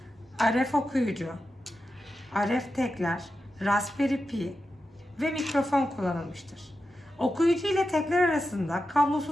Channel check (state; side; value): normal; both; correlation 0.90